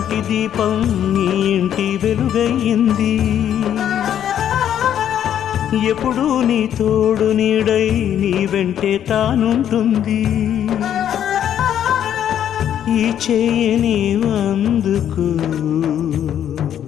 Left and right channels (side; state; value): right; quieter; 10.0 dB